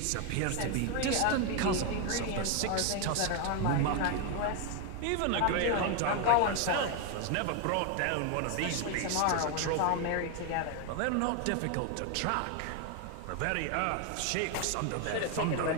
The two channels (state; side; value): different; both; correlation 0.01